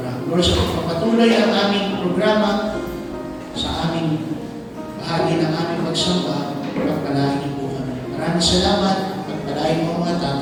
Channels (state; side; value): identical; both; correlation 1.00